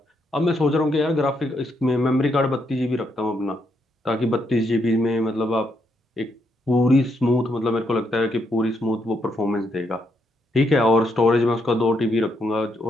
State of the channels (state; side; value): normal; both; correlation 0.77